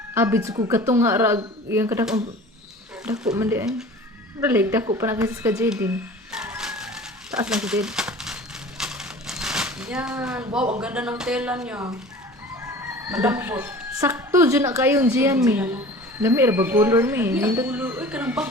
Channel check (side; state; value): both; normal; correlation 0.42